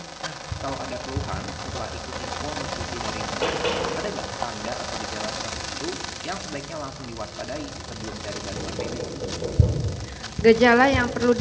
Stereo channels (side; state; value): both; identical; correlation 1.00